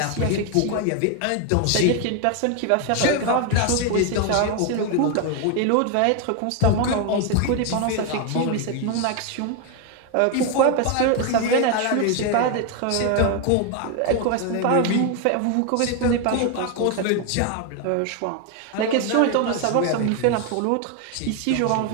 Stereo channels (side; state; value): both; different; correlation 0.01